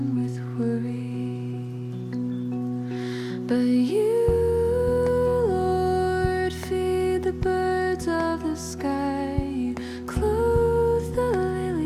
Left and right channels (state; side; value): identical; both; correlation 1.00